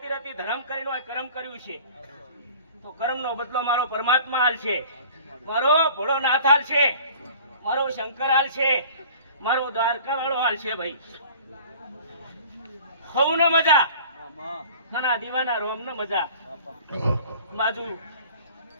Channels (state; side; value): inverted; both; correlation -0.46